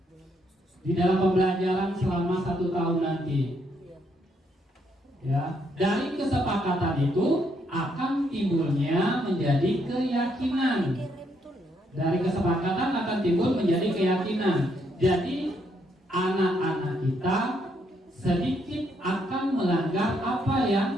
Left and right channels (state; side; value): normal; both; correlation 0.74